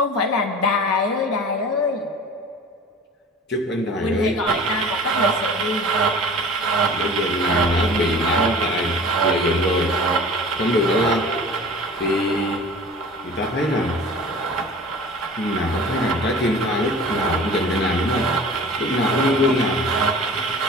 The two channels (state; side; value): normal; both; correlation 0.42